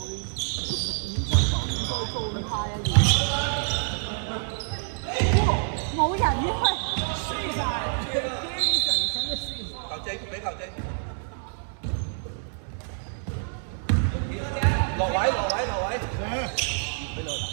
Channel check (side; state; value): left; silent; 59 dB below the other